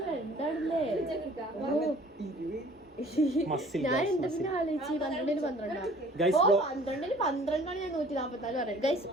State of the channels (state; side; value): normal; both; correlation 0.52